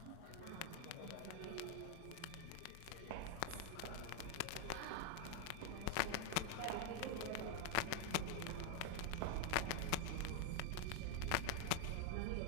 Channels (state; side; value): different; both; correlation 0.01